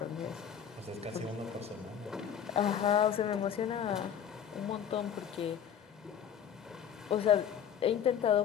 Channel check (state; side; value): quieter; right; 8.6 dB